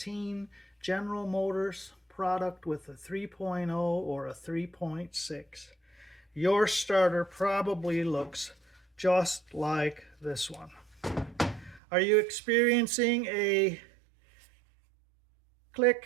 General Motors product with a 3.0 or a 3.6, your starter probably looks just like this one. Are you experiencing a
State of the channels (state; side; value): drops out; left; at 11.8 s